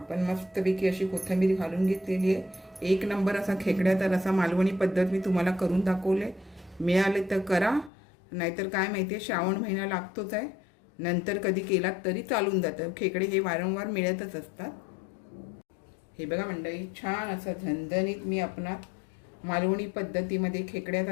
मस्तपैकी अशी कोथिंबीर घालून घेतलेली आहे. एक नंबर असा खेकड्याचा रस्सा मालवणी पद्धत मी तुम्हाला करून दाखवले. मिळाले तर करा, नाहीतर काय माहिती आहे श्रावण महिना लागतोच आहे, नंतर कधी केलात तरी चालून जातं. खेकडे हे वारंवार मिळतच असतात. हे बघा मंडळी छान असं झणझणीत मी आपणास मालवणी पद्धतीमध्ये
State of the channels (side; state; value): right; drops out; at 7.9 s